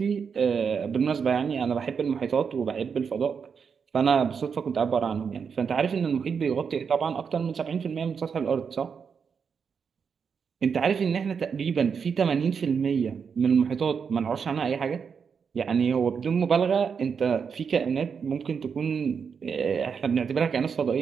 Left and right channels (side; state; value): left; quieter; 6.3 dB